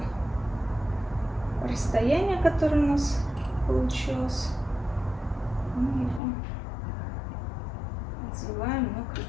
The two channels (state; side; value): drops out; right; at 6.2 s